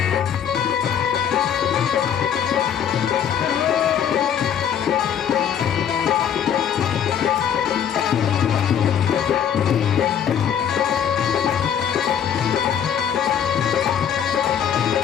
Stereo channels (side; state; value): right; quieter; 8.6 dB